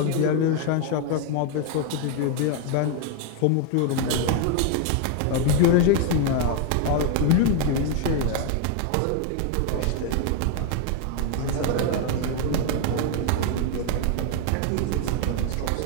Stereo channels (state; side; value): different; both; correlation 0.01